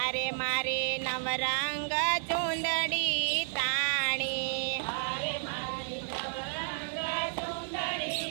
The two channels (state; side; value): silent; left; 57 dB below the other